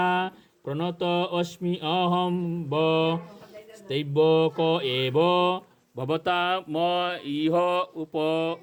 प्रणत अस्मि अहं व स्तैवक एव भवता म इह उप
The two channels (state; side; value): identical; both; correlation 1.00